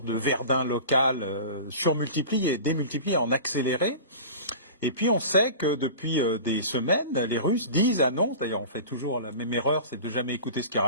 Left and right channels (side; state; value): both; inverted; correlation -0.36